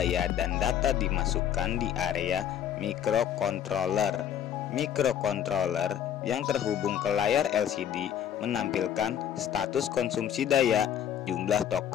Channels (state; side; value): quieter; right; 9.7 dB